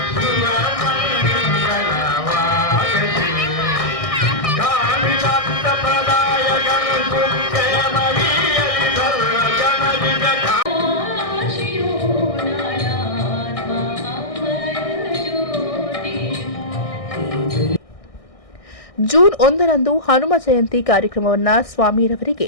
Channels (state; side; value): late; right; 1.6 ms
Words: ಜೂನ್ 1ರಂದು ಹನುಮ ಜಯಂತಿ ಕಾರ್ಯಕ್ರಮವನ್ನು ಸ್ವಾಮಿರವರಿಗೆ